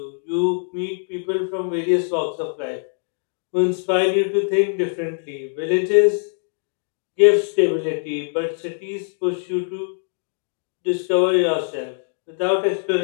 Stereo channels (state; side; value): silent; right; digital silence